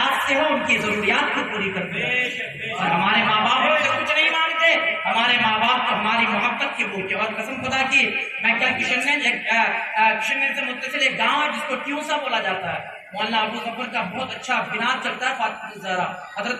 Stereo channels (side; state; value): both; identical; correlation 1.00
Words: سے ہو ان کی ضروریات کو پوری کرتے ہیں. اور ہمارے ماں باپ ہم سے کچھ نہیں مانگتے, ہمارے ماں باپ کو ہماری محبت کے بھوکے. اور قسم خدا کی میں کل کشن سے متصل ایک گاؤں ہے جس کو ٹیوسا بولا جاتا ہے, مولانا ابو ظفر کا بہت اچھا بناد چلتا ہے, فاطمہ الزہرا حضرت